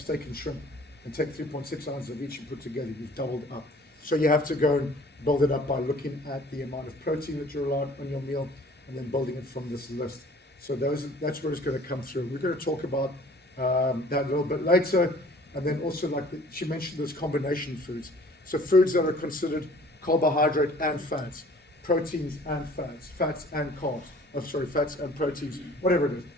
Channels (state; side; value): normal; both; correlation 0.51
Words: and shrimp and take 3.6 ounces of each and put together. You've doubled up. So you have to go and build it up by looking at the amount of protein that you're allowed on your meal and then building it from this list. So that's where it's going to come through. We're going to talk about that a little bit later. And then also, like she mentioned, those combination foods. So foods that are considered carbohydrate and fats, proteins and fats, fats and carbs. Oh, sorry, fats and proteins, whatever it